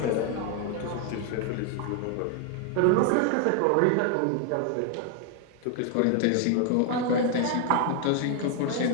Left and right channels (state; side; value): different; both; correlation 0.00